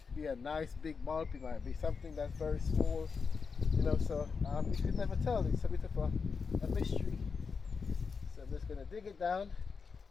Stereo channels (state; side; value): quieter; right; 5.3 dB